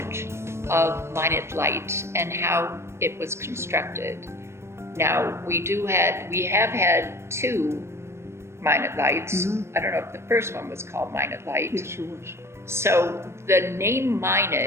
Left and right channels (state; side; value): late; left; 0.13 ms